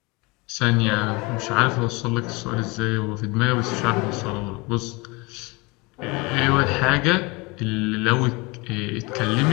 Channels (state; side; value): quieter; right; 26.1 dB